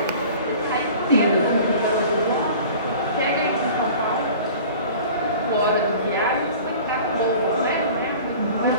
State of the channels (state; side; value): inverted; both; correlation -0.43